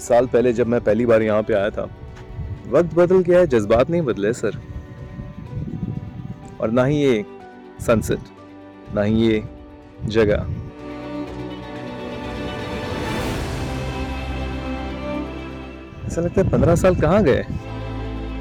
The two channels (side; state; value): both; identical; correlation 1.00